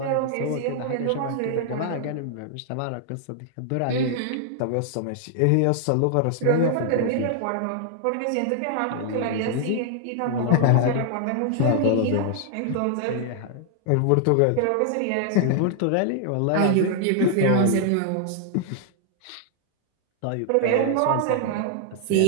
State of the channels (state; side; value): different; both; correlation -0.01